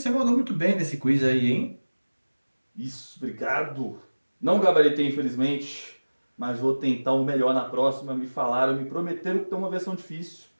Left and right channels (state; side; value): inverted; both; correlation -1.00